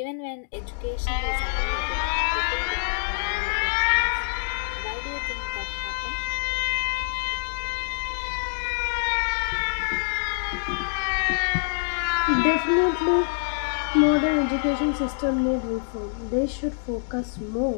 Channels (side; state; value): right; silent; 61 dB below the other